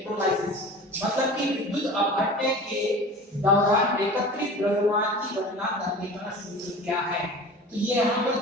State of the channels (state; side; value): normal; both; correlation 0.38